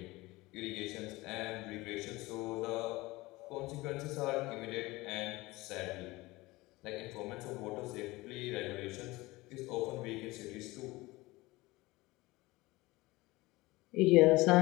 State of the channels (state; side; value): quieter; right; 20.9 dB